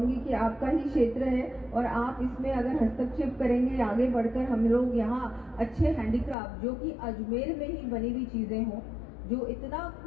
कि आपका ही क्षेत्र है और आप इसमें अगर हस्तक्षेप करेंगे, आगे बढ़कर हम लोग यहाँ अच्छे हैंडीक्राफ्ट जो कि अजमेर में ही बनी हुई चीजें हों, जो इतना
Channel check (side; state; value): right; drops out; at 6.4 s